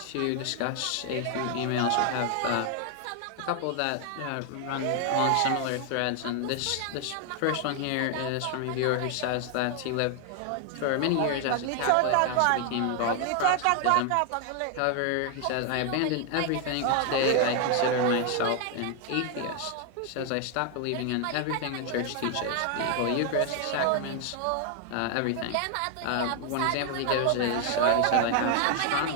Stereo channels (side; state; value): both; different; correlation 0.00